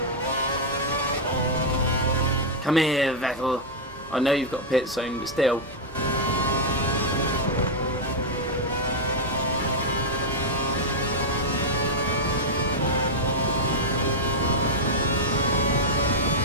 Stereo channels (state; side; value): normal; both; correlation -0.03